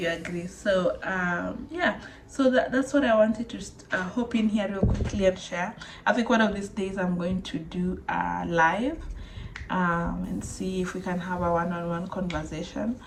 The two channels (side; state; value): both; identical; correlation 1.00